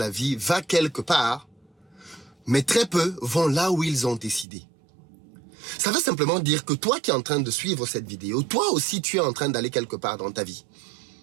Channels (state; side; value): drops out; left; at 4.5 s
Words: vie va quelque part, mais très peu vont là où ils ont décidé. Ça veut simplement dire que toi qui es en train de suivre cette vidéo, toi aussi tu es en train d'aller quelque part dans ta vie.